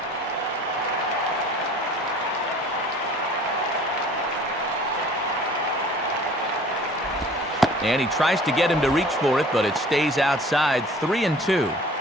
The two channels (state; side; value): normal; both; correlation 0.49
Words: And he tries to get him to reach for it, but it stays outside. 3-2.